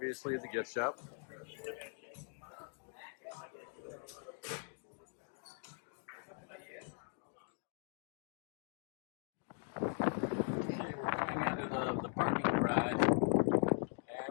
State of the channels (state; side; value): silent; right; 51 dB below the other